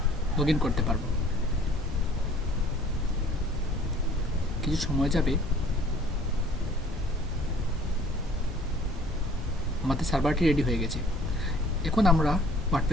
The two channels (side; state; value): both; normal; correlation 0.54